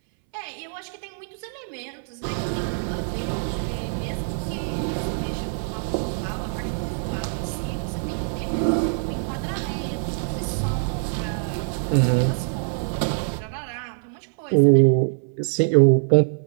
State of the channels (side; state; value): left; silent; 62 dB below the other